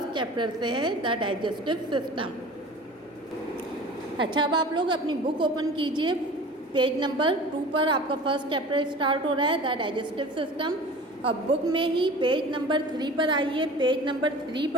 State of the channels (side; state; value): both; normal; correlation 0.40